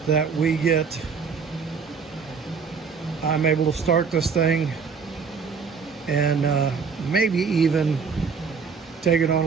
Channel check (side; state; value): left; quieter; 5.7 dB